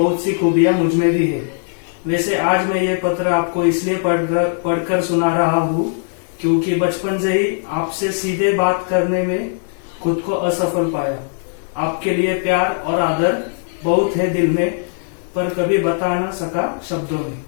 सी खूबियां मुझ में भी है। वैसे आज मैं ये पत्र आपको इसलिए पढ़कर सुना रहा हूँ क्योंकि बचपन से ही आपसे सीधे बात करने में खुद को असफल पाया। आपके लिए प्यार और आदर बहुत है दिल में, पर कभी बता ना सका शब्दों में।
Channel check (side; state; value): right; silent; digital silence